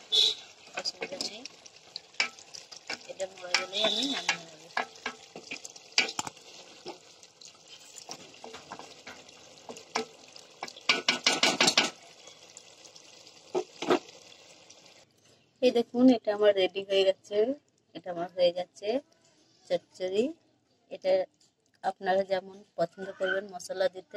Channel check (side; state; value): both; identical; correlation 1.00